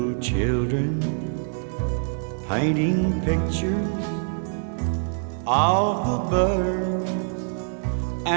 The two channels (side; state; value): left; silent; digital silence